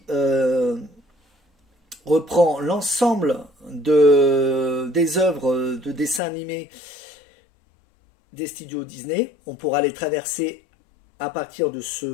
reprend l'ensemble des œuvres de dessins animés des studios Disney. On pourra les traverser à partir de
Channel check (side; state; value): right; drops out; at 6.2 s